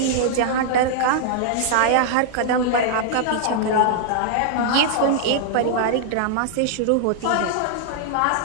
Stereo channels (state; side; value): different; both; correlation -0.01